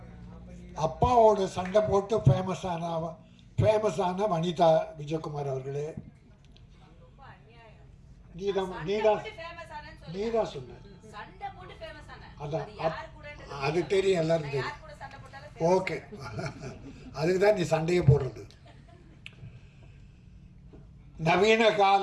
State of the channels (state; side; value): identical; both; correlation 1.00